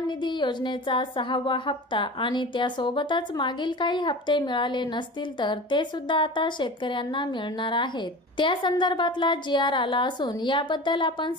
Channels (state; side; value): normal; both; correlation 0.34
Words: निधी योजनेचा 6वा हप्ता आणि त्यासोबतच मागील काही हप्ते मिळाले नसतील तर ते सुद्धा आता शेतकऱ्यांना मिळणार आहेत। त्या संदर्भातला GR आला असून याबद्दल आपण